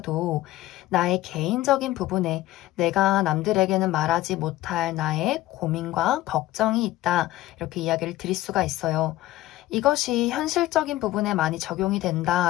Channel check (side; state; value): right; quieter; 16.0 dB